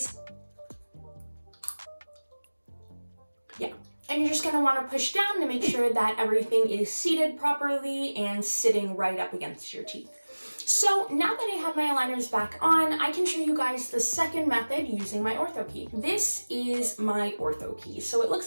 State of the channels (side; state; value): both; inverted; correlation -1.00